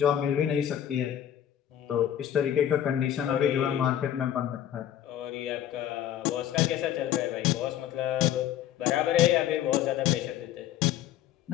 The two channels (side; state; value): right; quieter; 10.9 dB